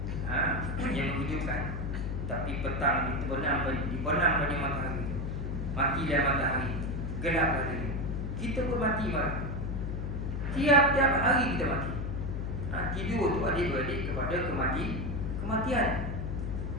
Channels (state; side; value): noise; left; hum, 3 dB below the sound